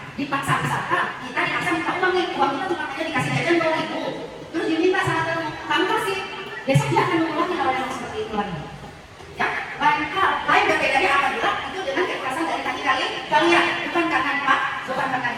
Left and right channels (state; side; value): identical; both; correlation 1.00